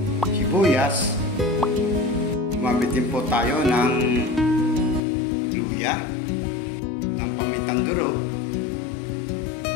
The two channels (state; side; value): drops out; right; at 5.0 s